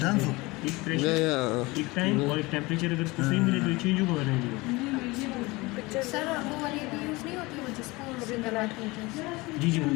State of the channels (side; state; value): right; quieter; 22.9 dB